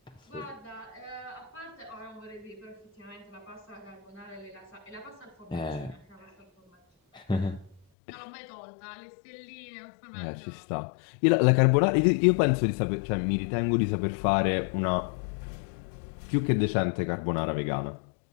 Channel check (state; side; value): drops out; right; at 7.8 s